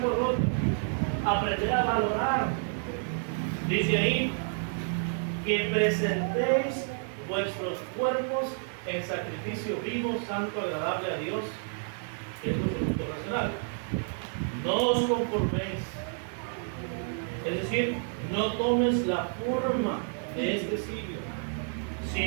roto. Aprender a valorar. Dice ahí que presentéis vuestros cuerpos en sacrificio vivo, santo, agradable a Dios, que es nuestro culto racional. No os conforméis. Es decir, no tomes la forma de este siglo,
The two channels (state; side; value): silent; left; 58 dB below the other